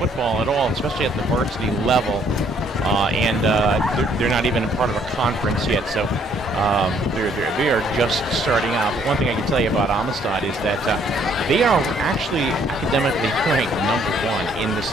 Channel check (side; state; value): both; normal; correlation 0.65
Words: at all, especially at the varsity level, and they're not even a part of a conference yet, so they are just starting out. But one thing I can tell you about Amistad is that they are actually academically ranked #1 in the